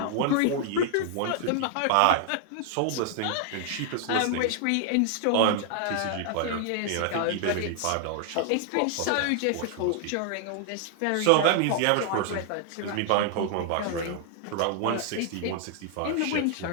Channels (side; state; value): both; different; correlation 0.00